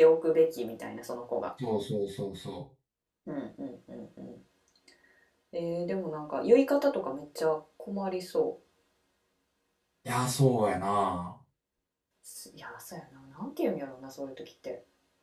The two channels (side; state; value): both; identical; correlation 1.00